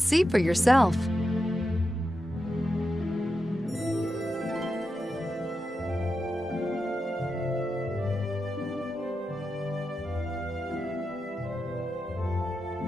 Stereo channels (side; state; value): both; normal; correlation 0.89